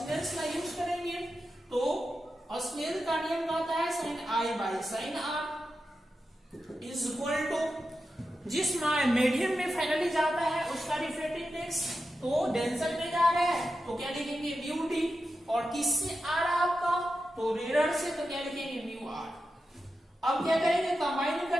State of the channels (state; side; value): normal; both; correlation 0.90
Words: का यूज करेंगे तो स्नेल का नियम कहता है sine I by sine R is equal to, जिस मीडियम में फाइनली जाता है उसका रिफ्रैक्टिव इंडेक्स, तो डेंसर में जा रहा है तो क्या लिखेंगे म्यू डी, और किससे आ रहा है आपका, तो रेयर से, तो क्या लिखेंगे म्यू आर। अब क्या करेंगे, कंबाइन